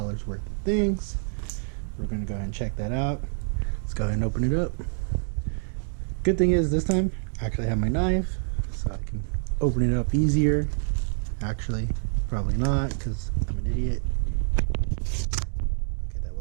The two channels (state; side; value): silent; left; 60 dB below the other